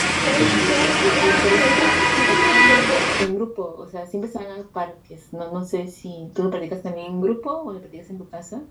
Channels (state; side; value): identical; both; correlation 1.00